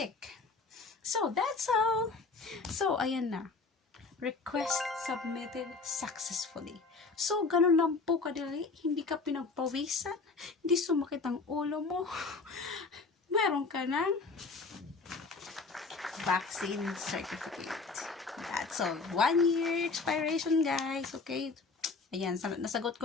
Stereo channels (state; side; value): quieter; right; 4.2 dB